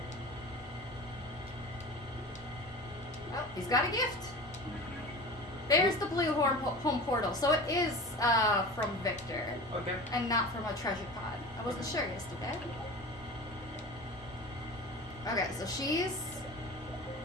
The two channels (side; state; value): both; normal; correlation 0.34